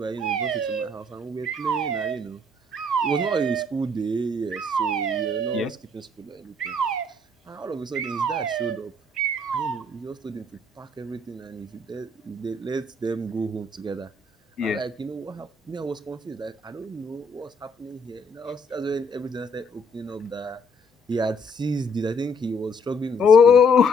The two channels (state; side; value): normal; both; correlation 0.65